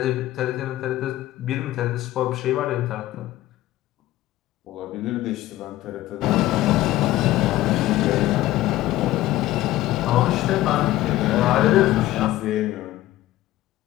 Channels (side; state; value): right; quieter; 15.6 dB